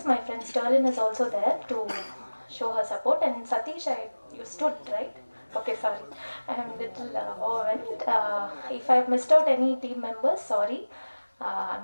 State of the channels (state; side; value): inverted; both; correlation -1.00